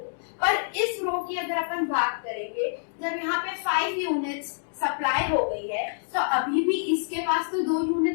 पर इस रो की अगर अपन बात करेंगे, जब यहाँ पे 5 यूनिट्स सप्लाई हो गई है तो अभी भी इसके पास तो 2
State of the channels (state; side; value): silent; right; digital silence